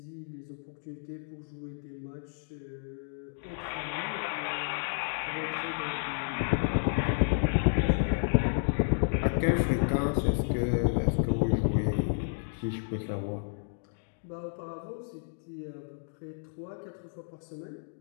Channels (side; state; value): right; silent; digital silence